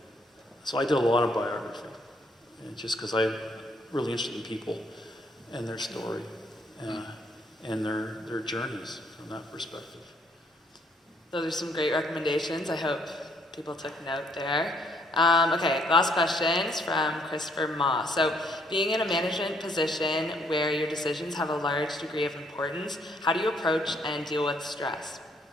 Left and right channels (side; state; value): both; normal; correlation 0.68